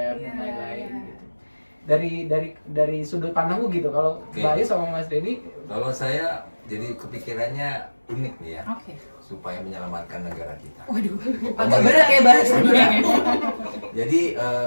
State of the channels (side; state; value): both; inverted; correlation -1.00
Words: dan lain-lain gitu. dari sudut pandangku gitu. Kalau Oke. Mbak Ayu sama Mas Denny, Kalau saya jadi kepikirannya unik nih ya, Oke. supaya menyelamatkan negara kita. Waduh, agak berat ya bahasanya. Jadi